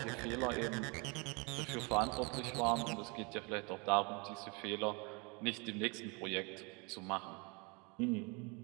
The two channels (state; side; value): quieter; left; 30.2 dB